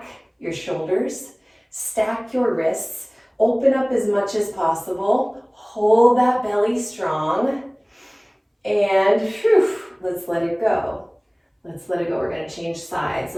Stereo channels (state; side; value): identical; both; correlation 1.00